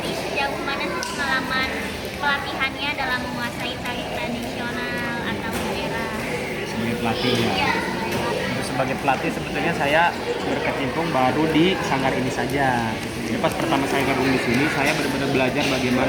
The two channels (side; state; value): both; identical; correlation 1.00